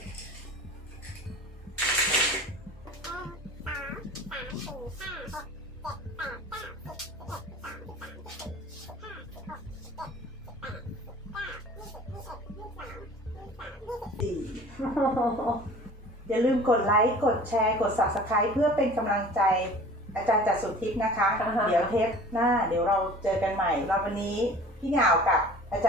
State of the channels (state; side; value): normal; both; correlation 0.44